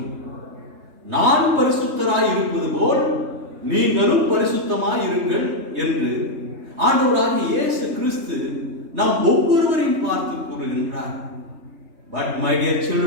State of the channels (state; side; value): late; left; 3.2 ms